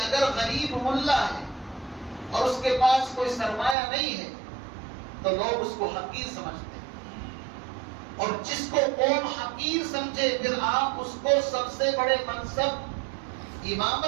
غریب ملا ہے اور اس کے پاس کوئی سرمایہ نہیں ہے تو لوگ اس کو حقیر سمجھتے ہیں. اور جس کو قوم حقیر سمجھے پھر آپ اس کو سب سے بڑے منصب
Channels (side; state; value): left; drops out; at 3.8 s